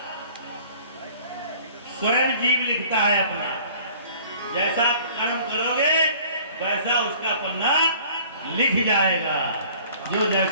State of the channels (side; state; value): both; inverted; correlation -0.51